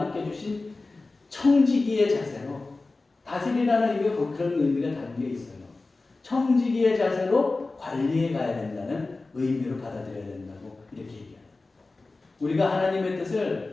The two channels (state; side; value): quieter; right; 3.4 dB